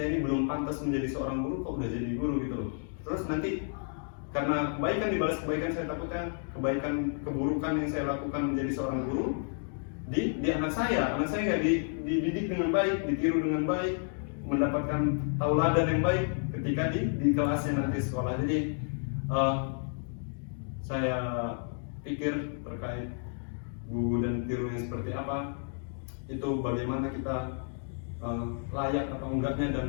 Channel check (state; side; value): silent; right; 57 dB below the other